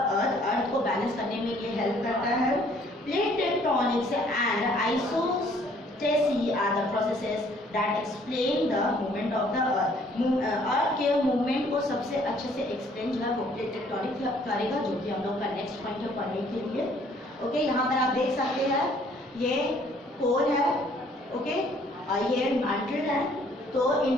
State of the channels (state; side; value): normal; both; correlation 0.60